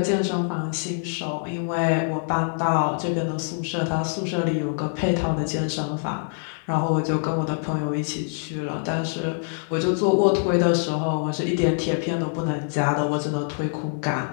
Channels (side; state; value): right; silent; 62 dB below the other